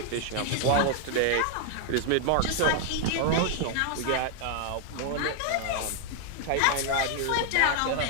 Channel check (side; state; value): both; different; correlation 0.00